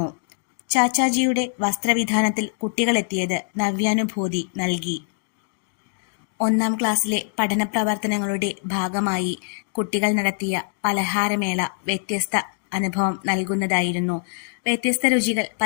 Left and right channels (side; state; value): right; silent; 63 dB below the other